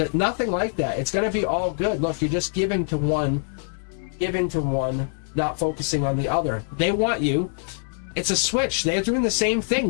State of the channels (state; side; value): silent; right; digital silence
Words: nothing like that. It's going to be all good. Look, you're just giving to one, not focusing on the other. They want you. It's a switch. They're doing the same thing.